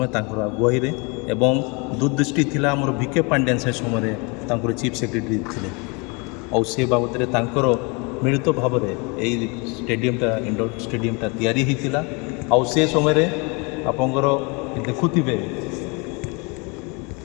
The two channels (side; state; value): right; quieter; 30.4 dB